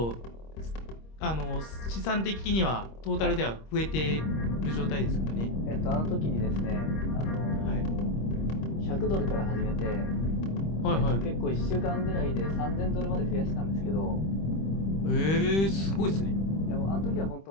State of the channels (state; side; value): late; right; 26 ms